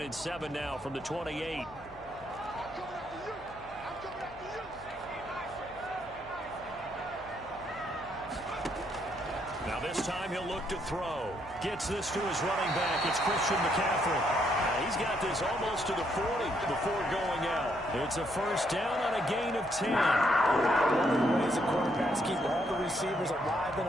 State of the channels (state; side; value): noise; left; hum, 22 dB below the sound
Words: and 7 now from the 28. Now this time he'll look to throw. Gets this to his running back. It's Christian McCaffrey. He's got this almost to the 40 before going out. It's a first down on a gain of 10. One of the ways the quarterbacks keep all the receivers alive in